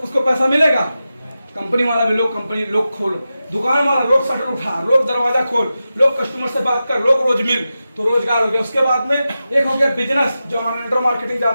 उसको पैसा मिलेगा? कंपनी वाला भी लोग खोल, दुकान वाला रोज शटर उठा, रोज दरवाजा खोल, लोग कस्टमर से बात कर, लोग रोज मिल, तो रोजगार हो गया। उसके बाद में एक हो गया बिजनेस, जो नेटवर्क मार्केटिंग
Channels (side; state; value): both; inverted; correlation -0.92